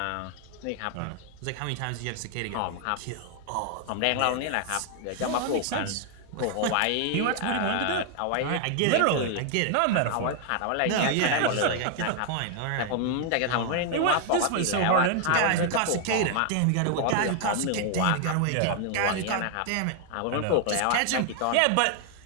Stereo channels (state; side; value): different; both; correlation 0.00